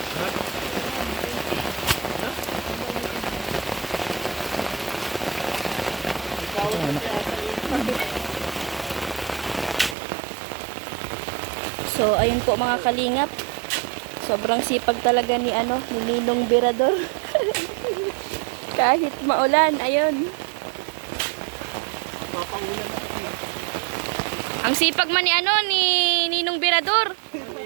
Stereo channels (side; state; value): left; drops out; at 10.0 s